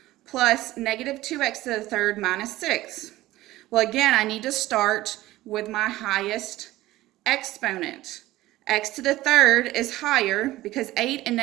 plus negative 2x to the third minus 6. Well, again, I need to start with my highest exponent. X to the third is higher because 8 and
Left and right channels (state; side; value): quieter; left; 16.8 dB